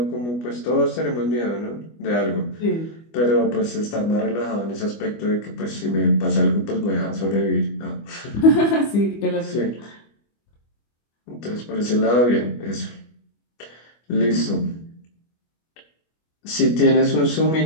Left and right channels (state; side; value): late; right; 25 ms